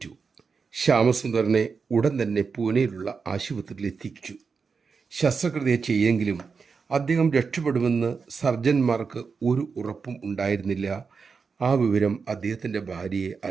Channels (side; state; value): left; quieter; 5.2 dB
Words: ശ്യാമസുന്ദറിനെ ഉടൻ തന്നെ പൂനെയിലുള്ള ആശുപത്രിയിൽ എത്തിച്ചു. ശസ്ത്രക്രിയ ചെയ്യെങ്കിലും അദ്ദേഹം രക്ഷപ്പെടുമെന്ന് സർജന്മാർക്ക് ഒരു ഉറപ്പും ഉണ്ടായിരുന്നില്ല. ആ വിവരം അദ്ദേഹത്തിൻ്റെ ഭാര്യയെ